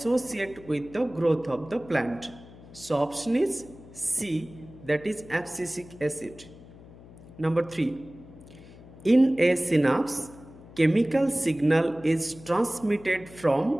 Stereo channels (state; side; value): noise; left; hum, 20 dB below the sound